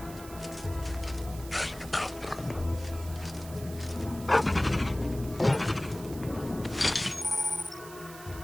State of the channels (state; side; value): noise; right; hiss, 16 dB below the sound